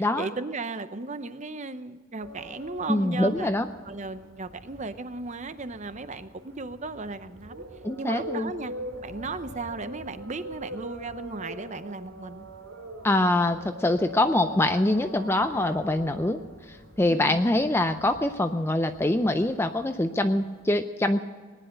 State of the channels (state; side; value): normal; both; correlation 0.67